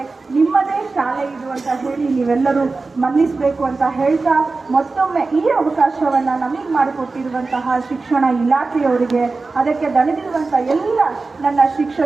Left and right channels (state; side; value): quieter; left; 3.8 dB